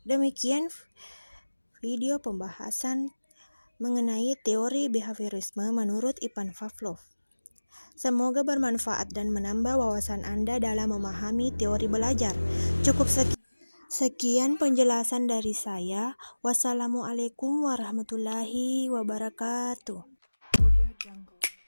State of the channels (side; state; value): both; inverted; correlation -1.00